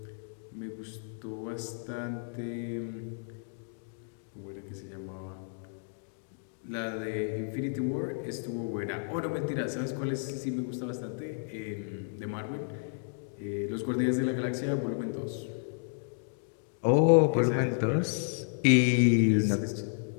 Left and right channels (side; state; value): right; silent; digital silence